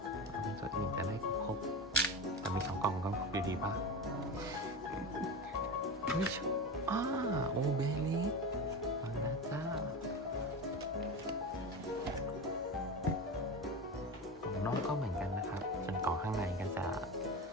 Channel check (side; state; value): both; normal; correlation 0.24